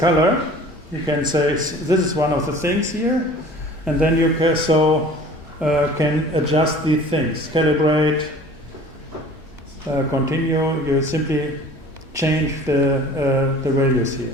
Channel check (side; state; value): both; normal; correlation 0.46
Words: You can say this is one of the things here, and then you can, can adjust these things, calibrate, continue. You simply change the values